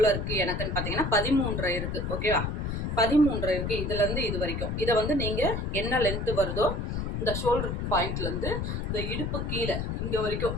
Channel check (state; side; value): noise; left; rumble, 2 dB below the sound